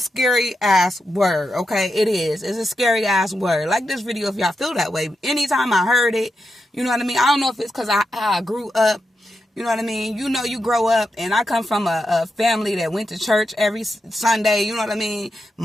ass word, okay? It is. It's a scary ass word. Like this video, if y'all feel that way. Anytime I heard it, you know what I mean? I don't know if it's because I grew up, you know what I mean? You know, you grow up, and I come from a family that went to church every Sunday, you know what I mean?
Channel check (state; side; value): normal; both; correlation 0.87